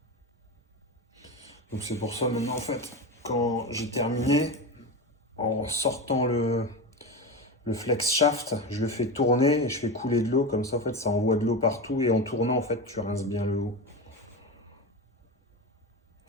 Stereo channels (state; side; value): normal; both; correlation 0.21